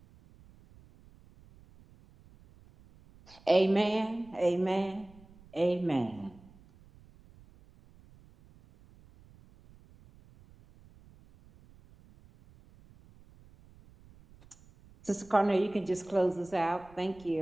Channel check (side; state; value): right; noise; rumble, 25 dB below the sound